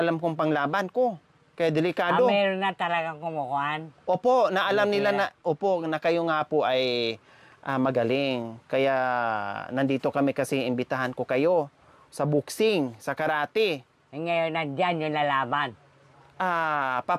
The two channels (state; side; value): identical; both; correlation 1.00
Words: kong panglaban ko. Kaya delikado. Meron na talagang kumukuhan. Opo, naalam nila na kayo nga po ay magaling. Kaya, nandito kami kasi imbitahan ko kayo sa boxing, sa karate. Ngayon, nandyan yung lalaban.